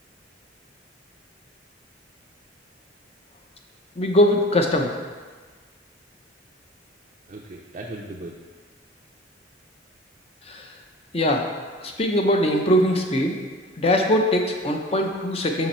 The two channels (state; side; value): normal; both; correlation 0.39